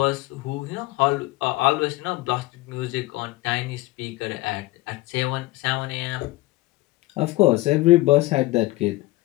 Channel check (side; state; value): right; quieter; 19.3 dB